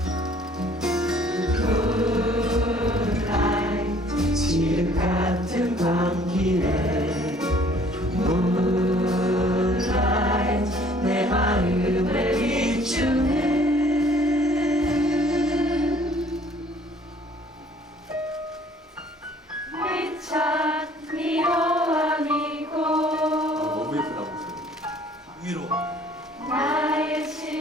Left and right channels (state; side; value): normal; both; correlation 0.57